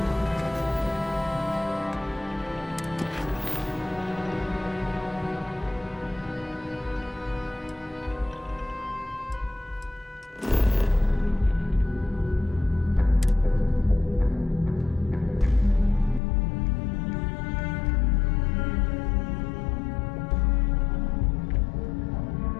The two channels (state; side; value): drops out; right; at 16.2 s